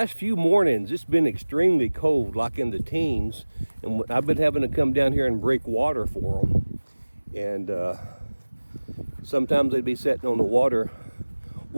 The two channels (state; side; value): inverted; both; correlation -1.00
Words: few mornings, it's been extremely cold, like in the teens, and I've been having to come down here and break water for them. And sometimes they'd be sitting on the water